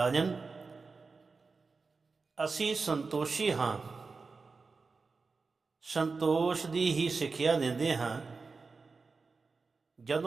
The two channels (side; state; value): left; quieter; 4.4 dB